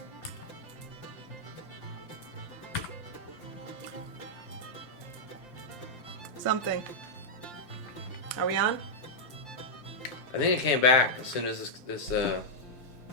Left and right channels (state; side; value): late; right; 5.8 ms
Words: Something. Are we on? I think it came back as soon as this